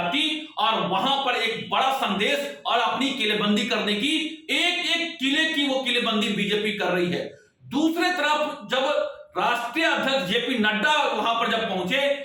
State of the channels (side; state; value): both; identical; correlation 1.00